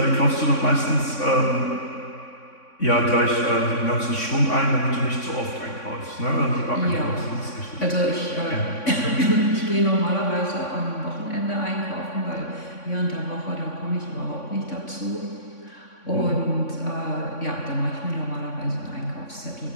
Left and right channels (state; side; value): late; right; 3.6 ms